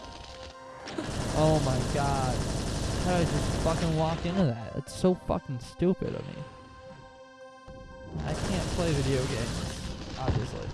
Oh my god. How did I just fucking walk into that? It's so fucking stupid of me. I can't play video games, obviously.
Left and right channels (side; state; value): both; identical; correlation 1.00